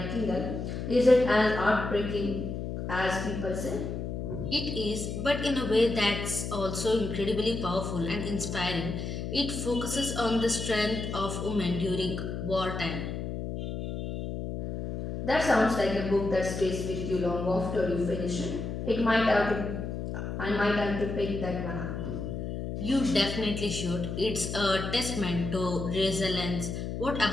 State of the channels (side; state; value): left; noise; hum, 5 dB below the sound